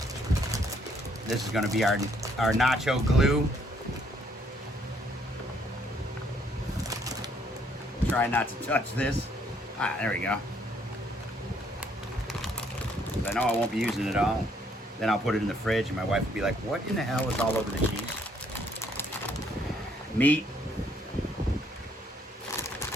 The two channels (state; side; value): normal; both; correlation 0.67